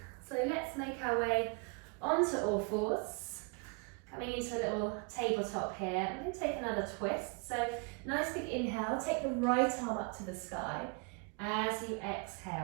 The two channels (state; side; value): quieter; left; 32.6 dB